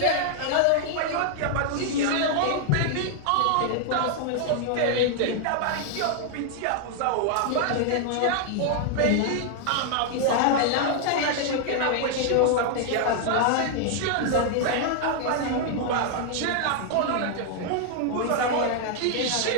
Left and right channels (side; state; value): both; different; correlation 0.00